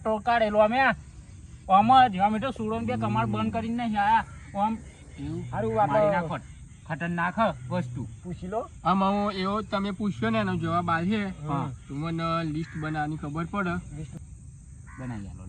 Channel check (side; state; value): both; identical; correlation 1.00